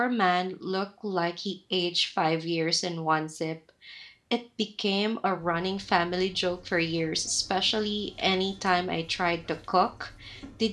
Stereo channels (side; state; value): both; identical; correlation 1.00